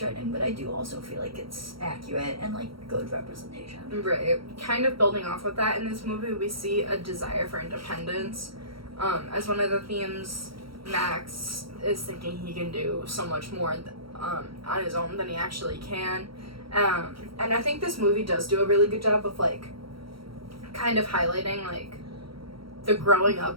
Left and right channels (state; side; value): late; left; 0.74 ms